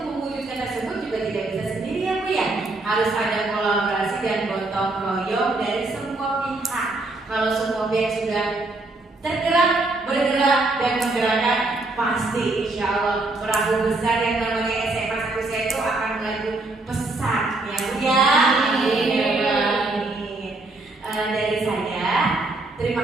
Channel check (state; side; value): quieter; left; 3.1 dB